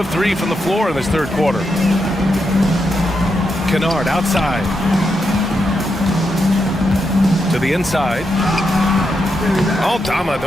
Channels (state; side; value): normal; both; correlation 0.84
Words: 3 from the floor in this third quarter. Kennard outside. To the inside. Oh, Dama,